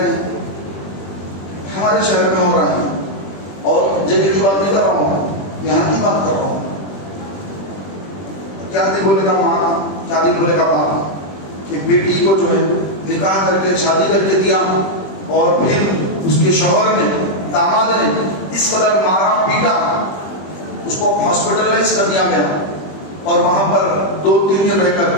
ہیں, ہمارے شہر میں ہو رہا ہے, اور جگہ کی بات نہیں کر رہا ہوں, یہاں کی بات کر رہا ہوں. کیا دل بولے گا ماں, کیا دل بولے گا باپ, کہ بیٹی کو جو ہے نکاح کر کے شادی کر کے دیا, اور پھر اس کے شوہر نے, داماد نے اس قدر مارا پیٹا, اس کو ہاسپٹلائز کر دیا گیا, اور وہاں پر 2-3 دن رہ کر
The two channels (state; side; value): late; right; 21 ms